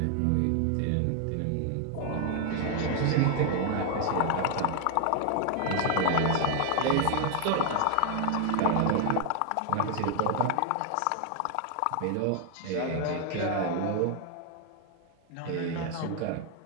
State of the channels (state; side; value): different; both; correlation 0.00